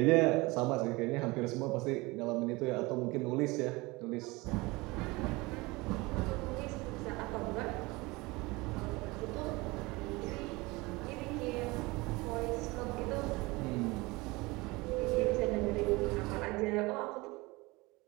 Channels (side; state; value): left; quieter; 23.2 dB